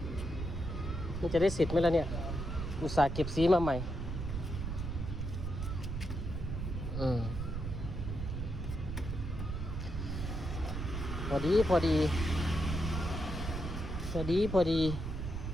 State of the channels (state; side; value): noise; right; rumble, 4 dB below the sound